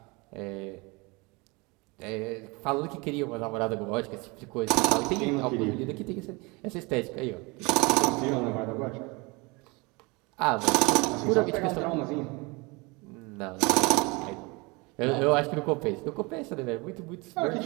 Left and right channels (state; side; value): quieter; left; 26.6 dB